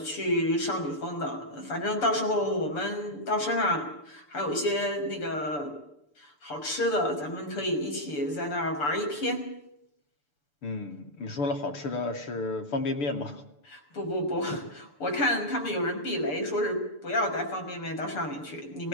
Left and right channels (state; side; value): late; right; 6.8 ms